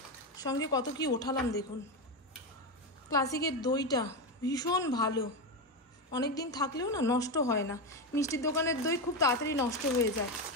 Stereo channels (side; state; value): both; normal; correlation 0.13